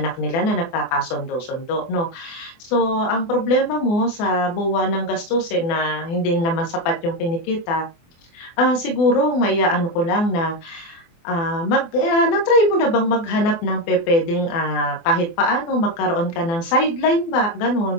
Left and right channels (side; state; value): right; late; 24 ms